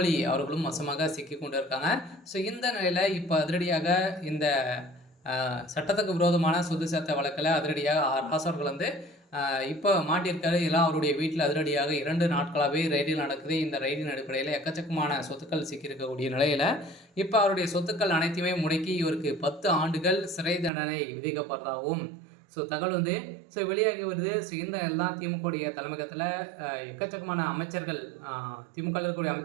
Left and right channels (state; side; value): drops out; left; at 20.7 s